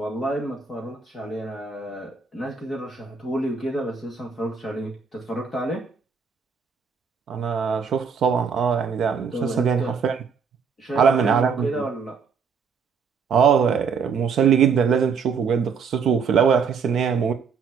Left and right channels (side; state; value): left; quieter; 5.9 dB